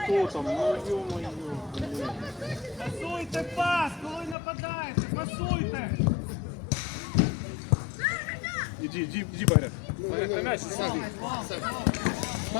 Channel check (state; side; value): drops out; right; at 4.4 s